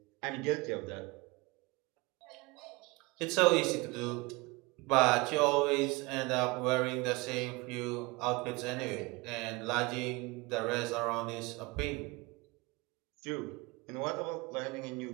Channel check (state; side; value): quieter; left; 24.4 dB